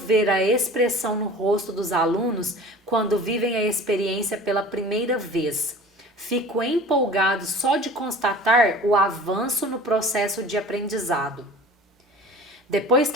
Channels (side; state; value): both; normal; correlation 0.41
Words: a expressão no rosto dos alunos quando vivem a experiência pela primeira vez. Fico empolgado só de constatar o avanço no processo de aprendizado. Depois